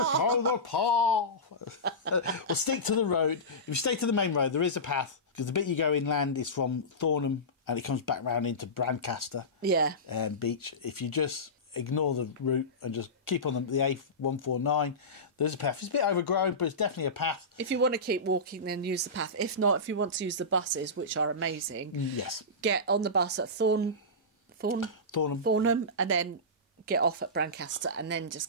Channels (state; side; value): normal; both; correlation -0.19